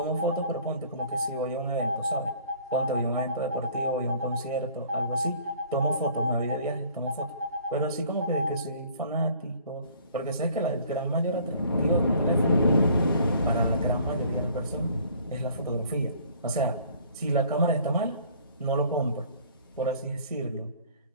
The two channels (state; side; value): inverted; both; correlation -0.54